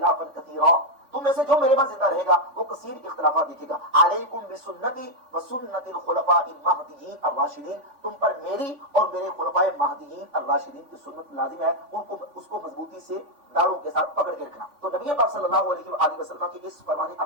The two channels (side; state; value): left; late; 3.5 ms